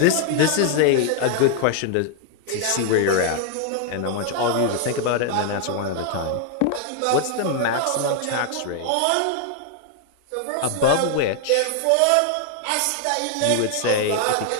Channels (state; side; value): different; both; correlation 0.00